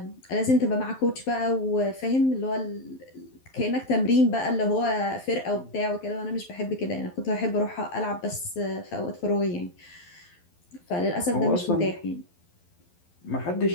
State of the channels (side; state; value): right; late; 12 ms